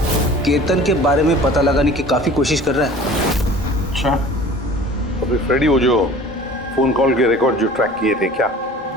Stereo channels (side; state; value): both; normal; correlation 0.44